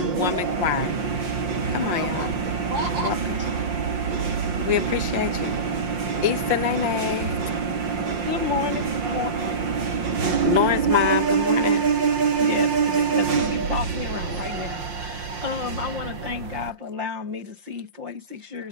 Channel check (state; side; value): late; left; 5.7 ms